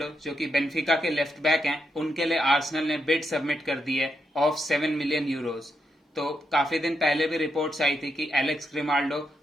जो कि बेनफिका के लेफ्ट बैक हैं, उनके लिए आर्सेनल ने बिड सबमिट कर दी है ऑफ 7 मिलियन यूरोज। तो काफी दिन पहले भी रिपोर्ट्स आई थी कि एलेक्स ग्रिमाल्डो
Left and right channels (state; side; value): normal; both; correlation 0.82